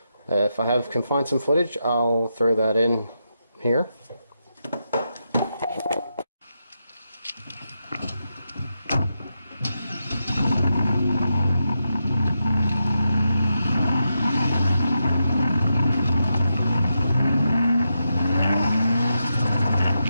if I can find some footage, I'll throw that in here.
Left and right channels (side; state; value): both; inverted; correlation -0.86